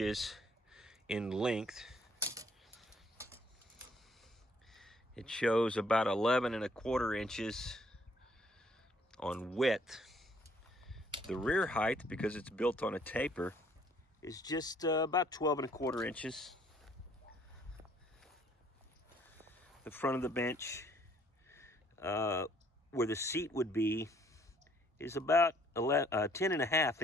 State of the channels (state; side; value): normal; both; correlation 0.63